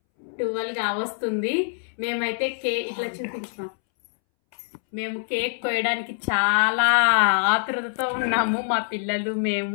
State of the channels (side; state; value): right; silent; 62 dB below the other